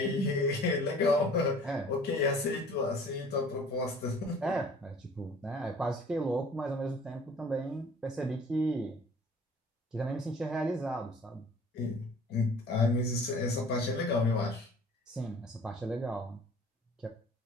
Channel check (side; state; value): both; normal; correlation 0.50